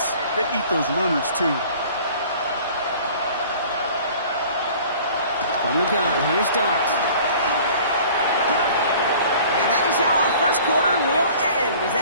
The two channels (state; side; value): inverted; both; correlation -0.48